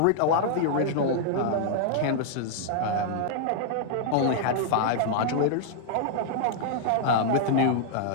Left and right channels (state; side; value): different; both; correlation -0.01